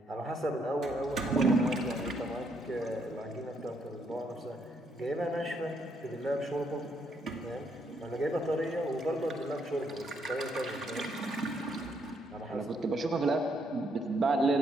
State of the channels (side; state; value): both; normal; correlation 0.73